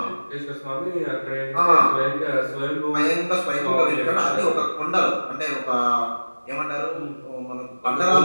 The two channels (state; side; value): inverted; both; correlation -1.00